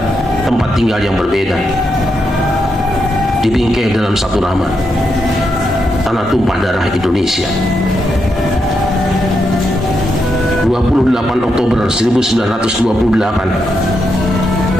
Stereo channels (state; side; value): normal; both; correlation 0.83